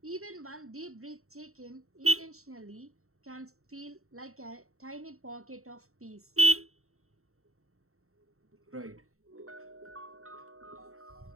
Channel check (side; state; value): left; late; 0.63 ms